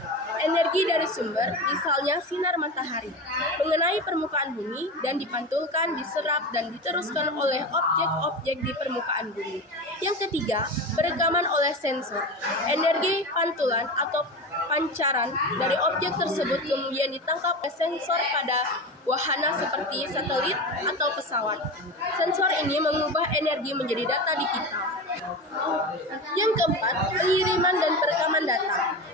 Energi dari sumber, misalnya sinar matahari, mengenai permukaan bumi dan dipantulkan, diserap, dan diteruskan oleh objek-objek di permukaan bumi. Yang ketiga, perekaman oleh sensor. Energi pantulan atau pancaran dari objek tersebut kemudian ditangkap oleh sensor pada wahana seperti satelit atau pesawat. Sensor ini mengubah energi menjadi data digital. Yang keempat, pengiriman dan perekaman data.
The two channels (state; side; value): normal; both; correlation 0.25